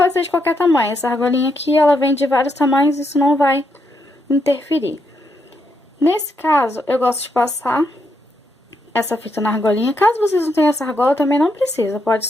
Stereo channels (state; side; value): normal; both; correlation 0.79